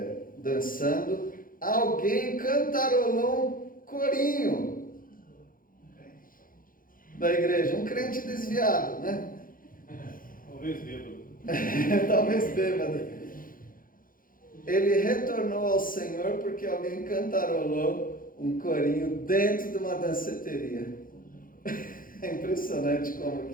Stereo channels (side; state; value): right; late; 0.40 ms